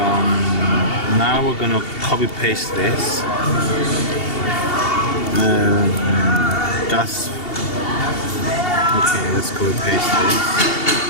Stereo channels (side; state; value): right; late; 2.7 ms